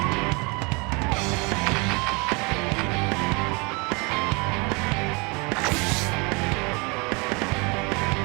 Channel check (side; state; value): left; quieter; 29.2 dB